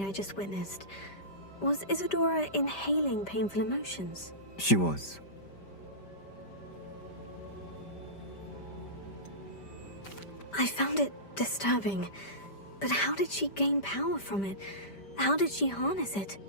I just witnessed. Was Isadora inhaling painful emotions? She was. I found it disturbing. But how did she gain power from it? How did she harness it?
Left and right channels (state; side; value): late; right; 5.1 ms